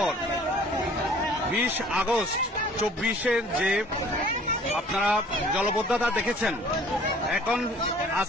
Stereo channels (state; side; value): normal; both; correlation 0.52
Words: 20 আগস্ট 24-এর যে আপনারা জলবদ্ধতা দেখেছেন, এখন